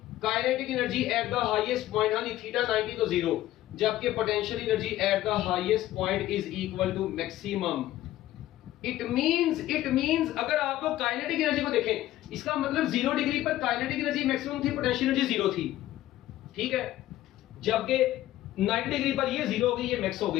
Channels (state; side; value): quieter; right; 14.6 dB